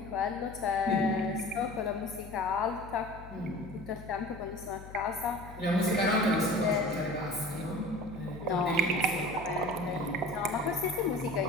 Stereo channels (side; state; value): left; noise; hum, 15 dB below the sound